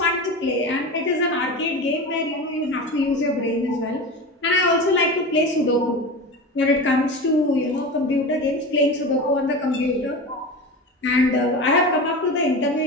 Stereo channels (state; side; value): normal; both; correlation 0.28